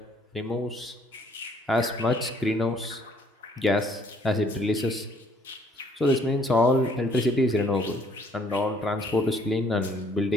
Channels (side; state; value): both; normal; correlation 0.63